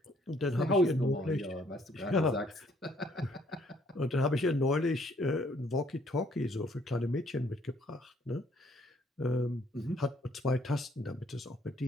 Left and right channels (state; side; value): normal; both; correlation 0.65